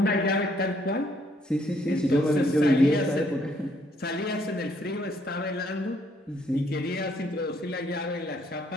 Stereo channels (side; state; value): both; normal; correlation 0.68